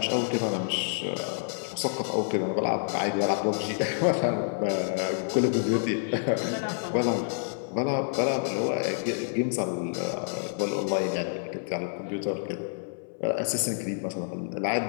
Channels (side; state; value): right; silent; 59 dB below the other